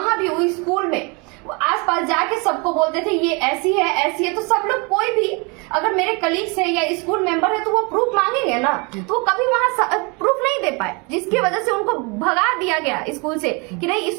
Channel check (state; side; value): quieter; left; 30.5 dB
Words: भी वही स्कूल में आसपास जाके सबको बोलते थे ये ऐसी है, ऐसी है। तो सब लोग, कोई भी अगर मेरे कलीग्स है या स्कूल मेंबर है तो वो प्रूफ मांगेंगे ना, तो वो कभी वहां प्रूफ नहीं दे पाए, जिसकी वजह से उनको भगा दिया गया स्कूल से कि नहीं,